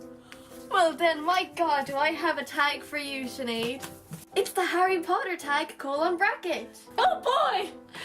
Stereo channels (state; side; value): identical; both; correlation 1.00